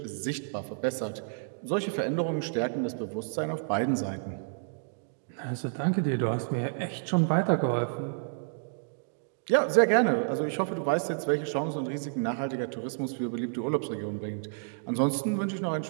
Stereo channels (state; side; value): silent; left; digital silence